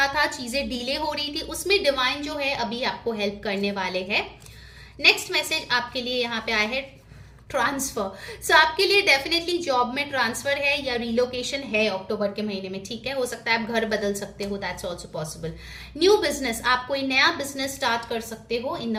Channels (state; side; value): identical; both; correlation 1.00